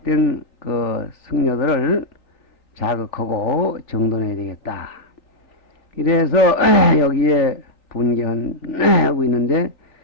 그 승려들을 자극하고 정돈해야 되겠다 이래서 여기에 분개하고 있는데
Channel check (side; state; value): right; late; 3.9 ms